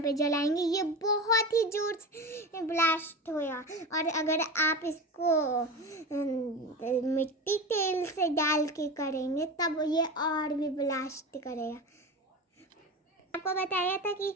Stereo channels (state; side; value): normal; both; correlation 0.27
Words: पे जलाएंगे, ये बहुत ही जोर से ब्लास्ट होगा। और अगर आप इसको मिट्टी तेल से डाल के करेंगे तब ये और भी ब्लास्ट करेगा। आपको बताया था कि